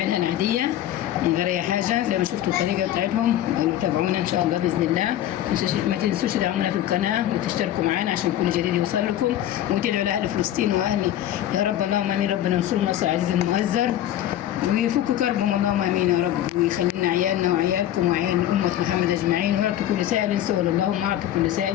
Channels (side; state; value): right; quieter; 12.2 dB